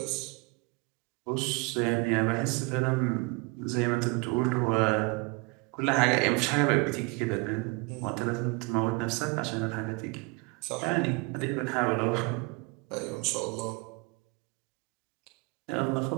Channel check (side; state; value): left; quieter; 28.0 dB